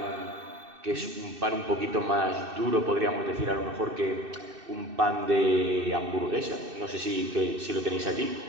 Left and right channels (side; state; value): left; late; 2.6 ms